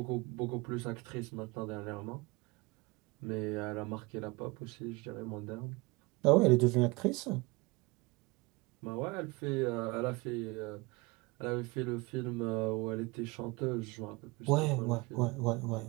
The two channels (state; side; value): quieter; left; 24.9 dB